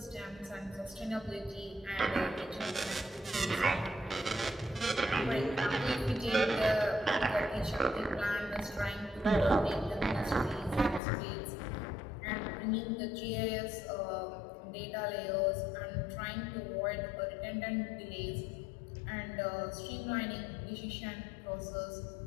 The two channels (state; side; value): drops out; right; at 11.0 s